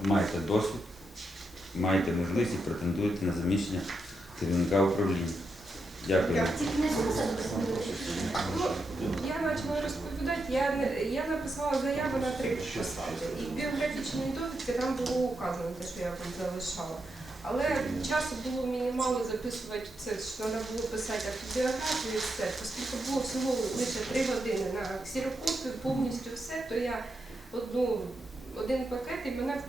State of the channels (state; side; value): normal; both; correlation 0.84